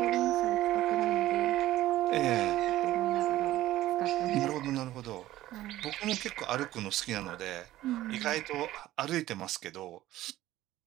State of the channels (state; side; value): quieter; left; 15.1 dB